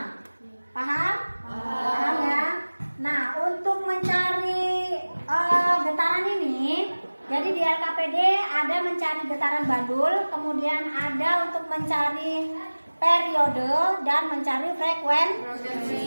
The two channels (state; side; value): inverted; both; correlation -1.00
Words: Paham? Paham ya? Nah, untuk mencari getaran ini, jadi di LKPD ada mencari getaran bandul, kemudian ada untuk mencari periode dan mencari